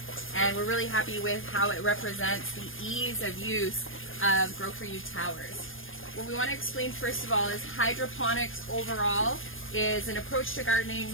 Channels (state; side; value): late; right; 0.59 ms